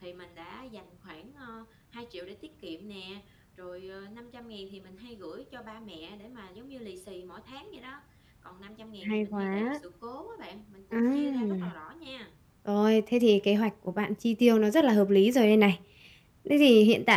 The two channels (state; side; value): identical; both; correlation 1.00